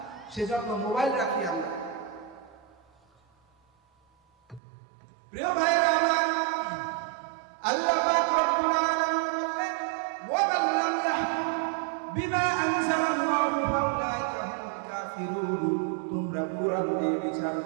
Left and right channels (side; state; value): left; drops out; at 4.6 s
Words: সেজন্য মোবাইল রাখি আমরা। প্রিয় ভাইয়েরা আমার, আল্লাহ পাক রব্বুল আলামিন বললেন ওয়া মান লাম ইয়াহকুম বিমা আনজালাল্লাহু ফাউলাইকা হুমুল কাফিরুন। তোমরা কোরআন দিয়ে বিচার